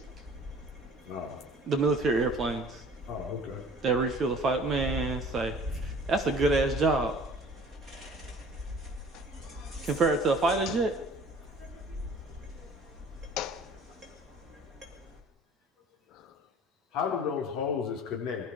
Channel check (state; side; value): normal; both; correlation 0.49